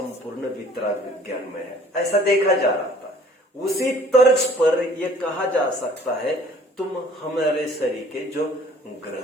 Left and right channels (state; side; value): normal; both; correlation 0.54